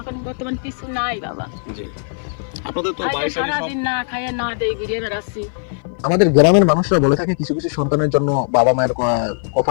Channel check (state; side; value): silent; right; 57 dB below the other